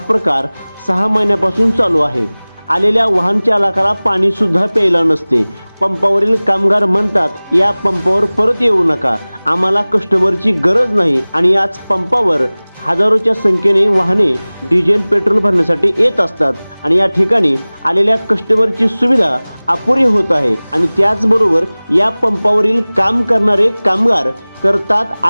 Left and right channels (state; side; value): inverted; both; correlation -1.00